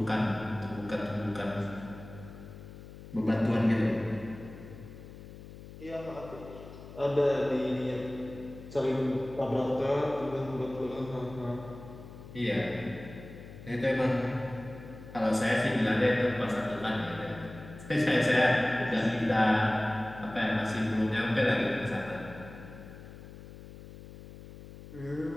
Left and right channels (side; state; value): left; noise; hum, 15 dB below the sound